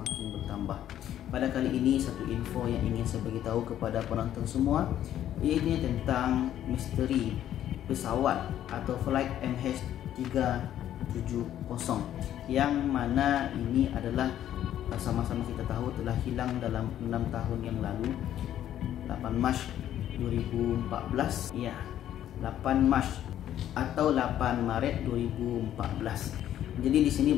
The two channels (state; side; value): quieter; right; 11.4 dB